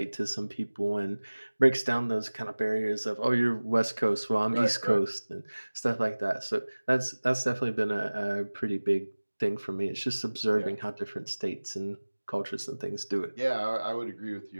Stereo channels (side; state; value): both; inverted; correlation -1.00